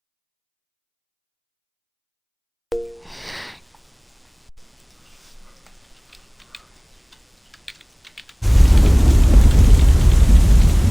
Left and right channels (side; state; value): both; identical; correlation 1.00